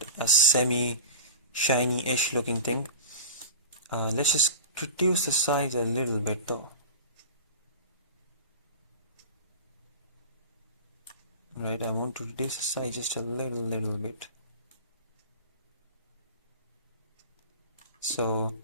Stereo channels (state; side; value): inverted; both; correlation -0.33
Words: a semi shiny-ish looking thing. Let's just reduce the size a little bit though. Right, I want to reduce the size just a little bit. So